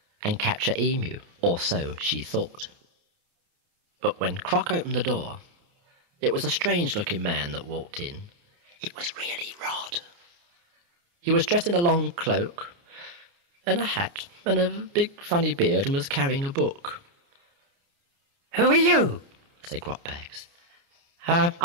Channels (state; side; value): late; left; 29 ms